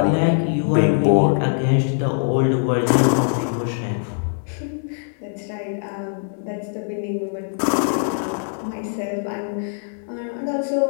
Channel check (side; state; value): right; silent; 64 dB below the other